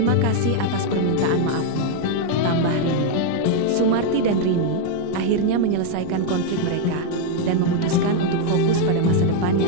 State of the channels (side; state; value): both; different; correlation 0.01